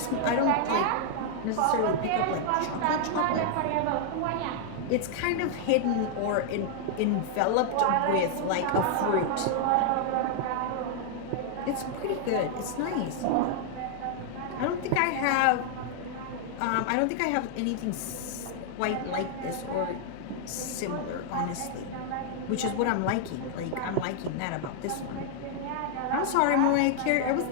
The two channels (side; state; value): both; different; correlation 0.00